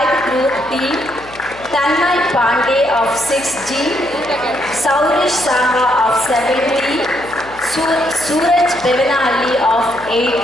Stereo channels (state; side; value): noise; left; hum, 21 dB below the sound